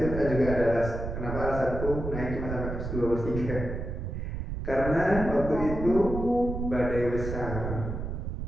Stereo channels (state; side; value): noise; right; rumble, 5 dB below the sound